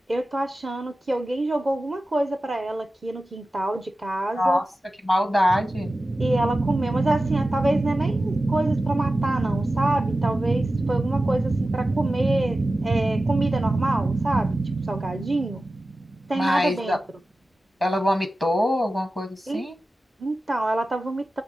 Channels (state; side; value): normal; both; correlation 0.94